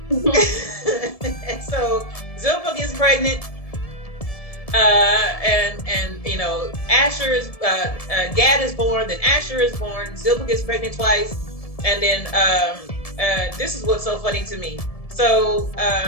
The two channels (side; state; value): right; late; 1.7 ms